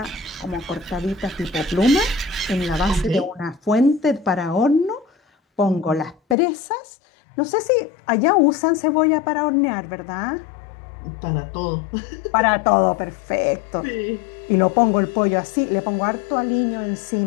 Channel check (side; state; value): right; drops out; at 6.4 s